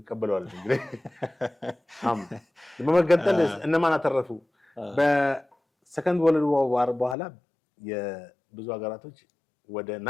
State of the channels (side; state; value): right; drops out; at 7.2 s